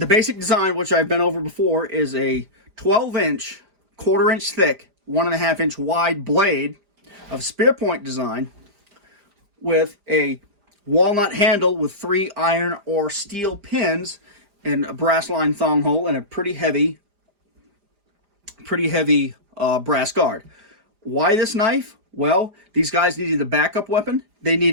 basic design, which I've been over before, is a 12-inch, quarter-inch thick, 1.5-inch wide blade of spear point design with a walnut handle with 3 iron or steel pins and a brass line thong hole and a pretty heavy brass guard. Why this knife? Well, these guys needed a backup weapon. They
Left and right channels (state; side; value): late; left; 4.9 ms